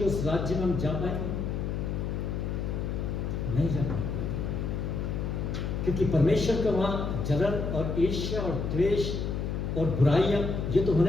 उस राज्य में हम जा पाएंगे? नहीं जा पाएंगे, क्योंकि परमेश्वर का वहां जलन और ईर्ष्या और द्वेष और बुराइयां ये तो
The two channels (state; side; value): noise; left; hum, 2 dB below the sound